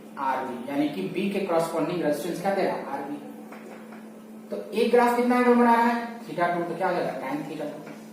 RB, यानी कि B के कॉरस्पॉन्डिंग रेजिस्टेंस क्या देगा? RB। तो एक ग्राफ कितना एंगल बना रहा है? थीटा टू, तो क्या हो जाएगा? tan theta two.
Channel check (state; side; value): identical; both; correlation 1.00